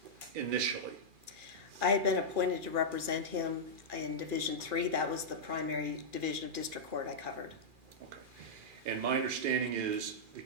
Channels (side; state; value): left; late; 2.4 ms